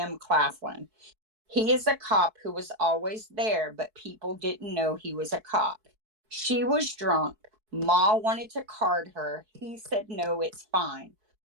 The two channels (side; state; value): left; late; 4.6 ms